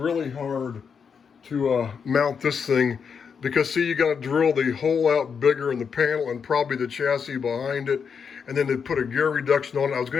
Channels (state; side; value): quieter; right; 6.4 dB